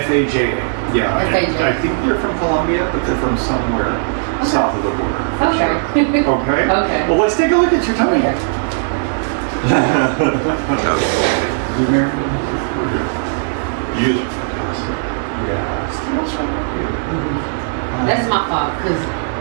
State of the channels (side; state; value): left; silent; digital silence